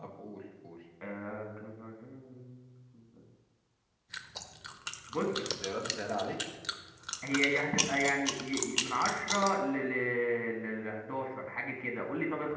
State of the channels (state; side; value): identical; both; correlation 1.00